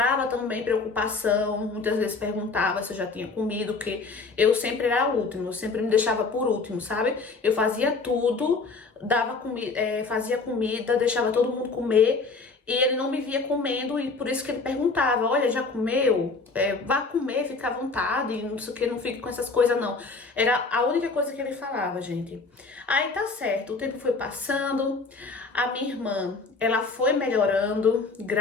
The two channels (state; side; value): quieter; right; 4.1 dB